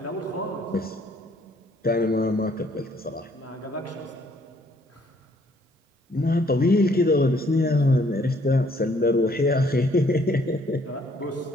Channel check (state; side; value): normal; both; correlation 0.64